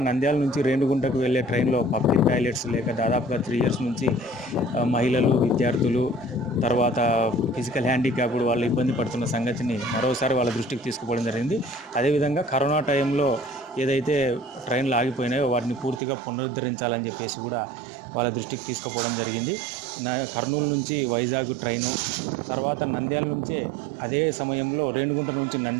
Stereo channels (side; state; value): left; drops out; at 16.0 s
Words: నంద్యాల నుంచి రేణిగుంటకు వెళ్ళే ట్రైన్లో పబ్లిక్ టాయిలెట్స్ లేక దాదాపుగా 3 ఇయర్స్ నుంచి మహిళలు, విద్యార్థులు, తర్వాత ఫిజికల్ హ్యాండిక్యాప్డ్ వాళ్ళు ఇబ్బంది పడుతున్న సంగతిని మరోసారి వాళ్ళ దృష్టికి తీసుకుపోవడం జరిగింది. అదేవిధంగా కరోనా టైంలో ఏదైతే ట్రైన్లు ఆగిపోయినాయో వాటిని పూర్తిగా పునరుద్ధరించాలని చెప్పేసి కూడా వాళ్ళ దృష్టికి తీసుకుపోవడం జరిగింది. కర్నూలు నుంచి వైజాగ్ ట్రైను, తర్వాత నంద్యాల నుంచి అదే సమయంలో రేణిగుంట నుంచి